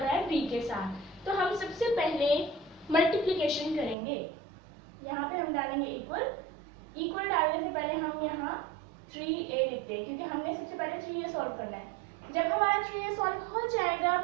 है b के साथ। तो हम सबसे पहले मल्टीप्लिकेशन करेंगे। यहाँ पे हम डालेंगे इक्वल। इक्वल डालने से पहले हम यहाँ 3a लिखते हैं क्योंकि हमने सबसे पहले 3a सॉल्व करना है। जब हमारा 3a सॉल्व हो जाएगा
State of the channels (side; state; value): left; drops out; at 4.0 s